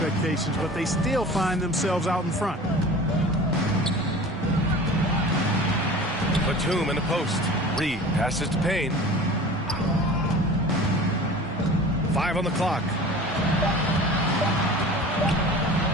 but they still find themselves out in front. Batum in the post. Reed passes to Payne. 5 on the clock.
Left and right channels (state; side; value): normal; both; correlation 0.40